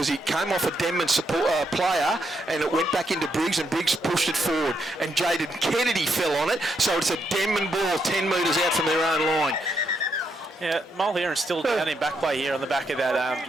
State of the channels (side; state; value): both; normal; correlation 0.79